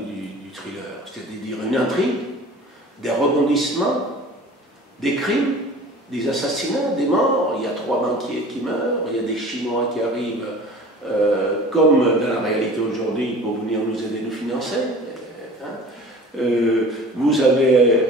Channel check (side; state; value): both; normal; correlation 0.42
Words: thriller, c'est-à-dire une intrigue, des rebondissements, des crimes, des assassinats, des morts. Il y a 3 banquiers qui meurent, il y a des Chinois qui arrivent, comme dans la réalité aujourd'hui, pour venir nous aider, nous financer. Vous